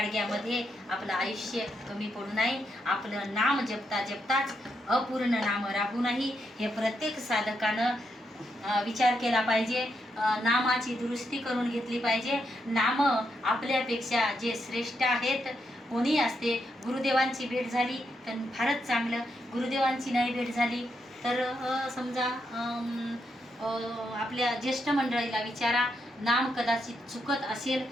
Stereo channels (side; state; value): both; normal; correlation 0.81